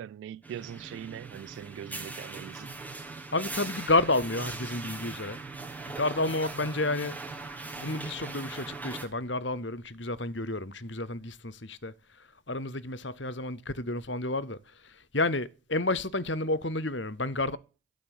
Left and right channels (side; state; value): both; normal; correlation -0.11